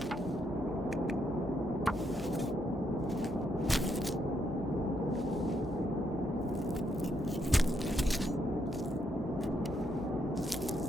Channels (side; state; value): both; normal; correlation 0.77